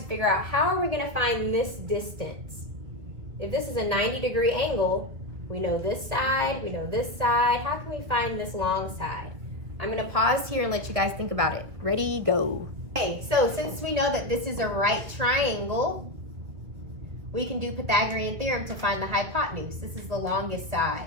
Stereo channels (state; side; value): late; left; 2.3 ms